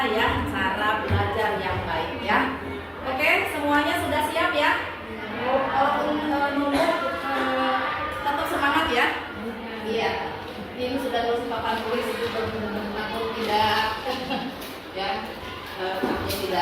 ya cara belajar yang baik ya. Oke, semuanya sudah siap ya? Walaupun nunggu tetap semangat ya. Iya. Ini sudah lulus papan tulis itu takut tidak ya, takutnya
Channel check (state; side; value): identical; both; correlation 1.00